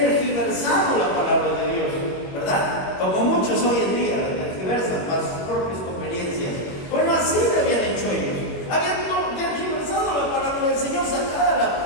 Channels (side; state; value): right; late; 21 ms